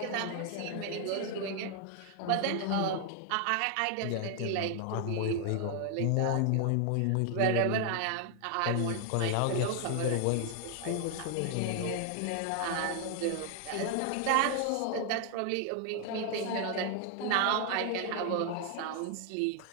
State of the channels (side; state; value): both; different; correlation 0.00